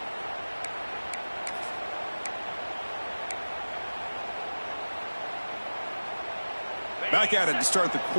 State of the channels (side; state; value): both; inverted; correlation -1.00